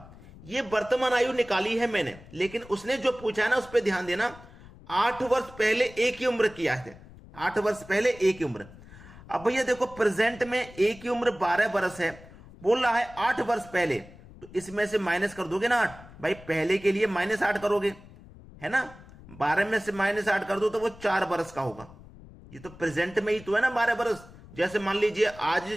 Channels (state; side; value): noise; left; rumble, 20 dB below the sound